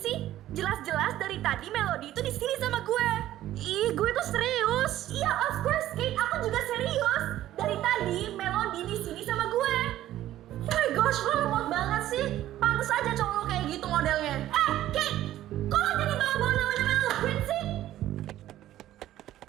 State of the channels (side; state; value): left; quieter; 13.6 dB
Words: Jelas-jelas dari tadi Melody itu di sini sama gue. Ih, gue tuh serius. Iya, of course, Kate. Aku juga serius. Dari tadi Melody di sini sama gue. Oh my gosh, lo lemot banget sih. Pantes aja cowok lo kayak gitu modelnya. Kate, kok lo jadi bawa-bawa namanya Mel Prince sih?